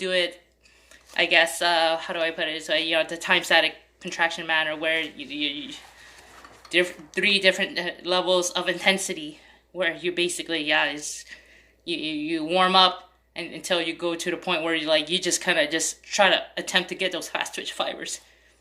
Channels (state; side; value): identical; both; correlation 1.00